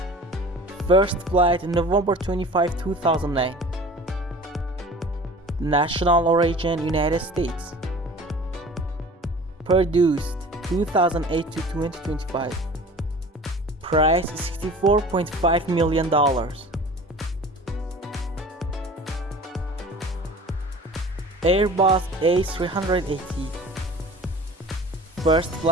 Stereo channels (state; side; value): normal; both; correlation 0.42